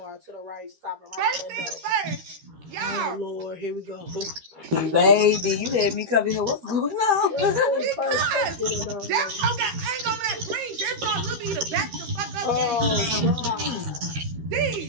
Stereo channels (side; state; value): left; late; 13 ms